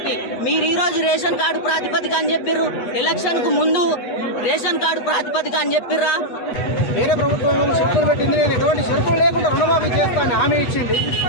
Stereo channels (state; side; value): late; right; 8.1 ms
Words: మీరు ఈ రోజు రేషన్ కార్డు ప్రాతిపదిక అని చెప్పిర్రు. ఎలక్షన్ కు ముందు రేషన్ కార్డు ప్రాతిపదిక అని చెప్పిర్రా? వేరే ప్రభుత్వం షరతులు పెట్టింది. నేను ఎటువంటి షరతులు లేకుండా రుణమాఫీ చేస్తానని హామీ ఇచ్చింది.